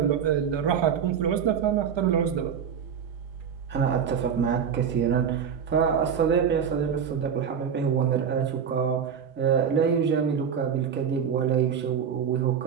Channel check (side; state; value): left; quieter; 7.6 dB